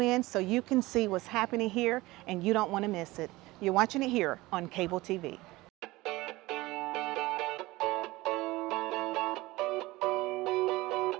so you can see what's happening here, and you don't want to miss it. You're watching it here on cable TV.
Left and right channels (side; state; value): left; quieter; 19.9 dB